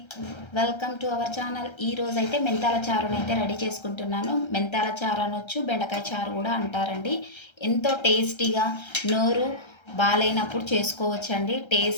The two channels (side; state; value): right; late; 1.3 ms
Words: వెల్కమ్ టు అవర్ ఛానల్. ఈరోజు అయితే మెంతాల చారుని అయితే రెడీ చేసుకుంటున్నాను. మెంతాల చారు అనొచ్చు, బెండకాయ చారు కూడా అంటారండి. ఎంతో టేస్టీగా, నోరు బాగాలేనప్పుడు చేసుకోవచ్చండి.